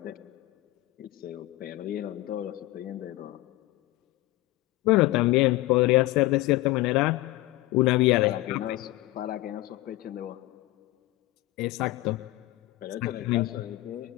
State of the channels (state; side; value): quieter; right; 18.7 dB